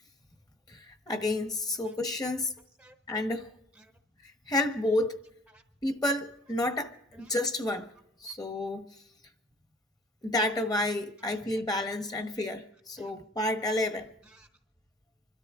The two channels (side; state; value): both; normal; correlation 0.53